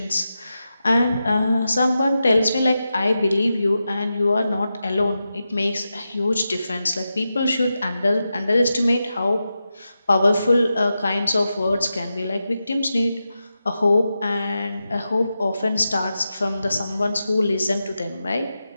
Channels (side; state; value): both; inverted; correlation -0.90